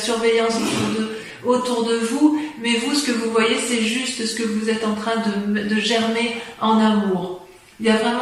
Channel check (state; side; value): identical; both; correlation 1.00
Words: autour de vous, mais vous, ce que vous voyez, c'est juste ce que vous êtes en train de germer en amour. Il y a